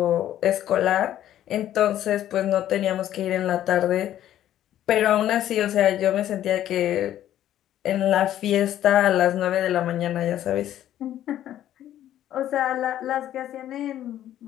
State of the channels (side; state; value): right; quieter; 12.0 dB